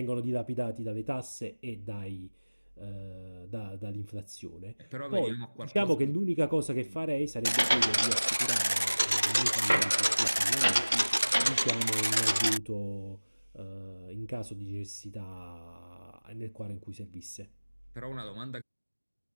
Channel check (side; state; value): both; inverted; correlation -1.00